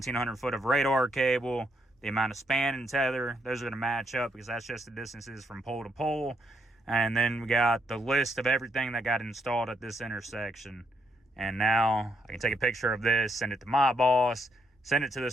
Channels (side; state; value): both; normal; correlation 0.76